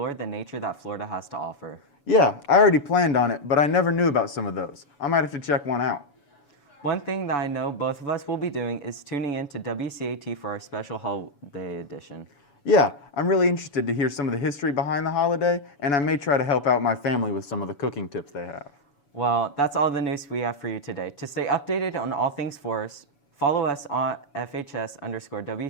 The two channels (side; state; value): right; late; 7.0 ms